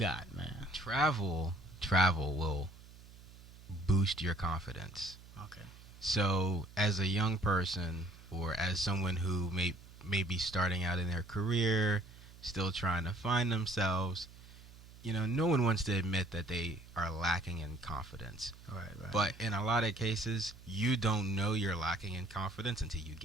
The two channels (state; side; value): noise; right; hum, 20 dB below the sound